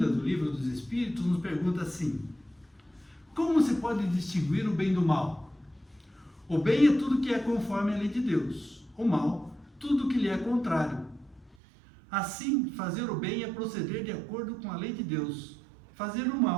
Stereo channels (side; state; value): left; drops out; at 11.6 s